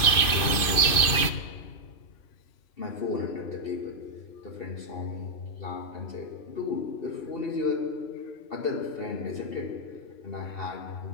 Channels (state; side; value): late; right; 2.5 ms